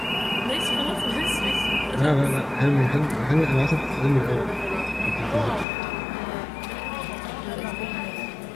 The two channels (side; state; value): right; drops out; at 5.7 s